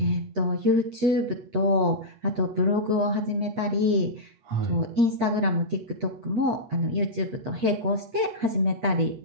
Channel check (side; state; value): left; late; 8.4 ms